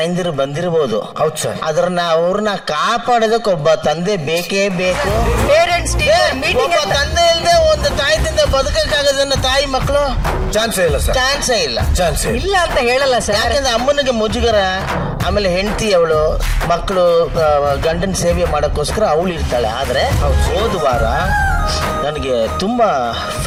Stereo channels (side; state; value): both; identical; correlation 1.00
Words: ಬಂದಿರಬಹುದು. ಹೌದು ಸರ್. ಅದ್ರನ್ನ ಅವ್ರನ್ನ ಕಾಪಾಡೋದಕ್ಕೆ ಒಬ್ಬ ತಂದೆ ಬೇಕೇ ಬೇಕು. ಪೇರೆಂಟ್ಸ್ ಮೀಟಿಂಗ್ ತಂದೆ ಇಲ್ಲದೆ ಒಂದು ತಾಯಿದಿಂದ ಬದುಕಕ್ಕಾಗದನ್ನ ತಾಯಿ ಮಕ್ಕಳು ಚಾನ್ಸೇ ಇಲ್ಲ ಸರ್. ಚಾನ್ಸೇ ಇಲ್ಲ. ಚಾನ್ಸೇ ಇಲ್ಲ ಅಂತ ಹೇಳಲ್ಲ ಸರ್. ಯಾಕಂದ್ರೆ ಅಮ್ಮನಿಗೆ ಮುಜುಗರ, ಆಮೇಲೆ ಹೆಂಡತಿ ಅವಳು, ಮಕ್ಕಳು ಗಂಡನ ಸೇವೆ ಮಾಡೋಕ್ಕೋಸ್ಕರ ಅವಳು ಇರ್ತಾಳೆ. ಆದ್ರೆ ಹೋದ ವಾರ ನನಗೆ ತುಂಬಾ